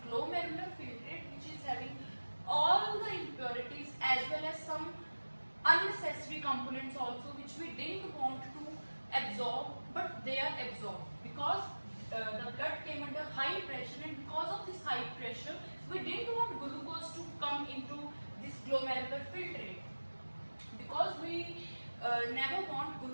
glomerular filtrate, which is having all the impurities as well as some unnecessary components also which we didn't want to absorb, but they are absorbed because the blood came under high pressure, and because of this high pressure we didn't want glucose to come into this glomerular filtrate, because we never want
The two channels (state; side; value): inverted; both; correlation -1.00